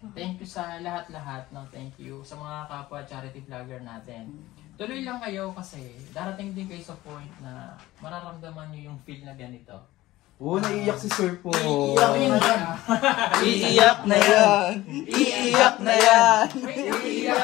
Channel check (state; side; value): quieter; right; 17.1 dB